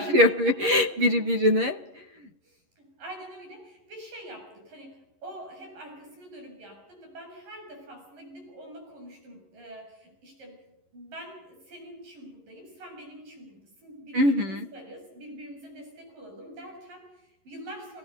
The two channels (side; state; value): left; late; 11 ms